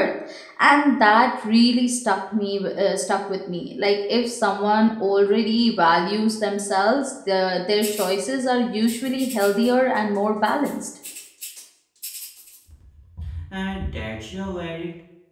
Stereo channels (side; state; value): both; identical; correlation 1.00